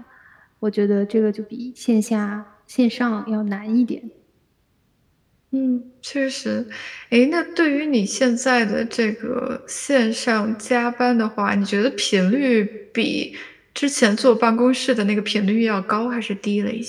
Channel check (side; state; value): both; identical; correlation 1.00